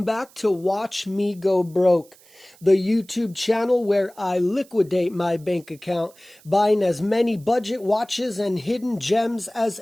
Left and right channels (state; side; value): noise; right; hiss, 27 dB below the sound